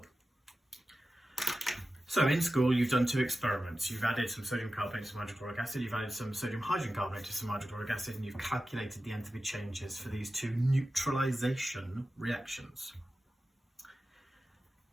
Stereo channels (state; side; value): normal; both; correlation 0.94